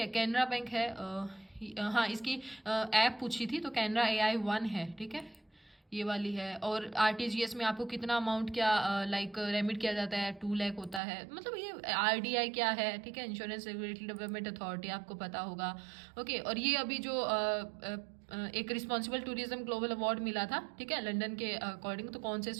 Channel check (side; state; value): left; drops out; at 11.0 s